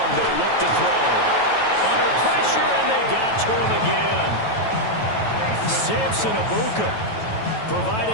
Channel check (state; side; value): late; right; 9.2 ms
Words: they look to throw. Under pressure, and they got to him again. Samson Abuka